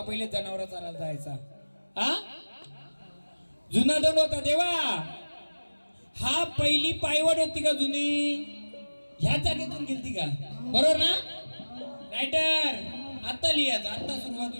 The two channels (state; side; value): inverted; both; correlation -1.00